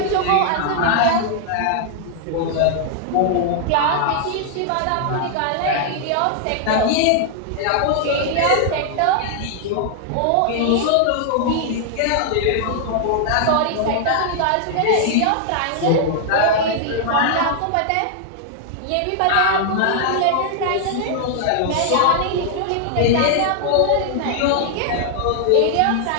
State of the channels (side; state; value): both; different; correlation 0.00